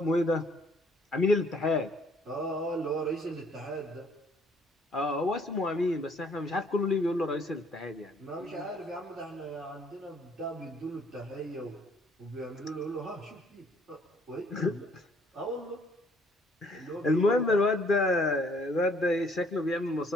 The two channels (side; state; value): both; normal; correlation 0.62